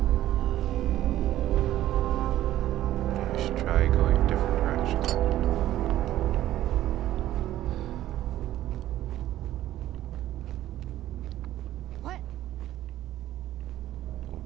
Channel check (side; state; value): left; quieter; 13.6 dB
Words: We should try going a different direction. What? Oh,